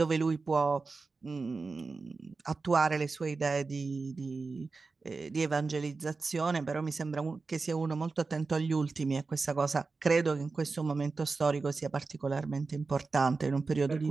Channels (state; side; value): quieter; left; 4.1 dB